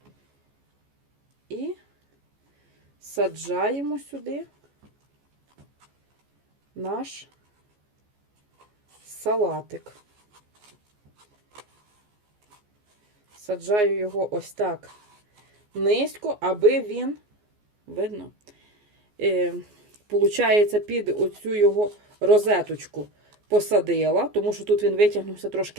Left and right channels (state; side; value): late; left; 14 ms